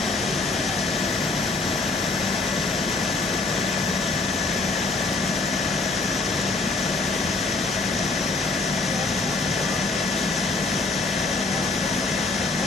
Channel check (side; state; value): right; quieter; 3.6 dB